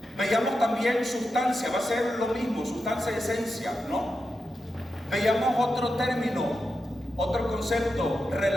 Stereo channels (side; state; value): both; normal; correlation 0.89